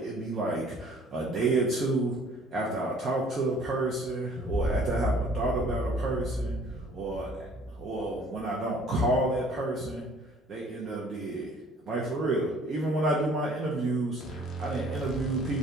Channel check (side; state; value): both; normal; correlation 0.55